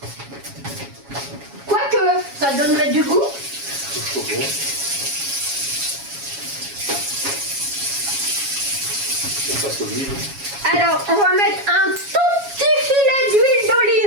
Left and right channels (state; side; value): late; left; 7.2 ms